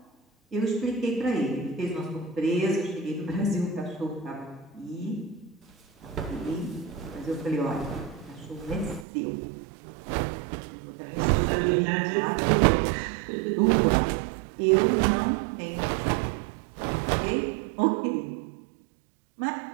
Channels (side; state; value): left; drops out; at 9.1 s